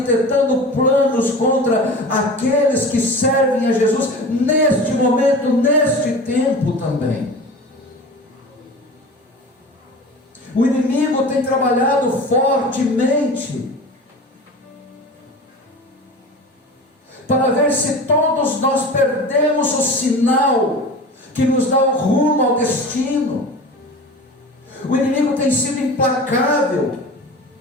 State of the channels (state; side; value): normal; both; correlation 0.35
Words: planos contra aqueles que servem a Jesus neste momento, neste tempo também. O inimigo tem trabalhado fortemente para ver se todos nós perdemos o sinal que nos dá o rumo ao destino. O inimigo tem sido implacável.